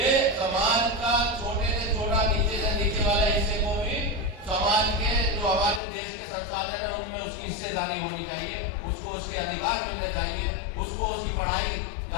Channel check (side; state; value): right; drops out; at 5.8 s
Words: समाज का छोटे से छोटा, नीचे से नीचे वाले हिस्से को भी समाज के जो हमारे देश के संसाधन है उनमें उसकी हिस्सेदारी होनी चाहिए, उसको उसके अधिकार मिलने चाहिए, उसको उसकी पढ़ाई,